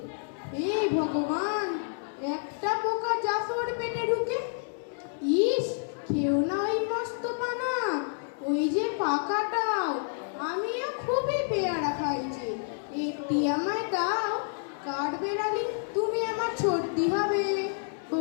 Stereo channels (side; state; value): right; silent; 58 dB below the other